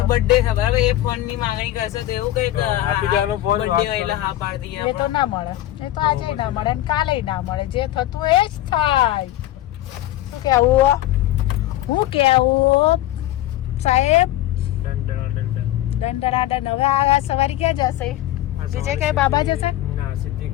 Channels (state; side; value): quieter; right; 14.4 dB